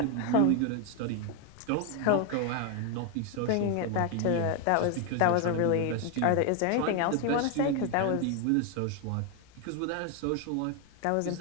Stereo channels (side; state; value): both; different; correlation 0.01